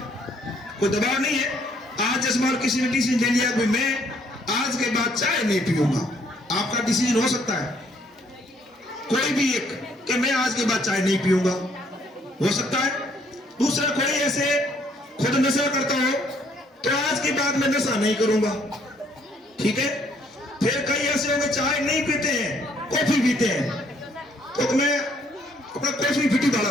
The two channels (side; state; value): both; normal; correlation 0.66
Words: कोई दबाव नहीं है, आज जैसे मान किसी ने डिसीजन ले लिया कि मैं आज के बाद चाय नहीं पीऊंगा, आपका डिसीजन हो सकता है कोई भी एक कि मैं आज के बाद चाय नहीं पीऊंगा, हो सकता है। दूसरा कोई ऐसे खुद नशा करता हो तो आज के बाद मैं नशा नहीं करूंगा, ठीक है। फिर कई ऐसे होंगे चाय नहीं पीते हैं, कॉफी पीते हैं, तो मैं अपना कॉफी पीटी